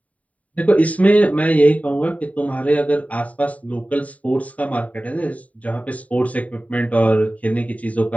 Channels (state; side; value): late; right; 0.069 ms